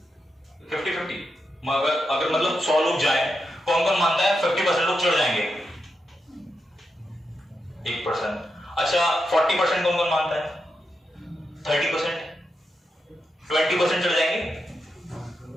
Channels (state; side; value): normal; both; correlation 0.86